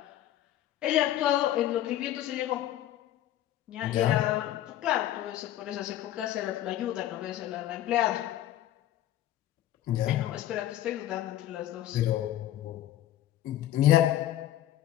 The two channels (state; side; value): quieter; right; 13.0 dB